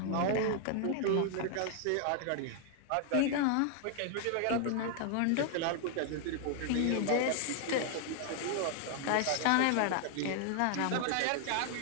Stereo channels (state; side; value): different; both; correlation 0.00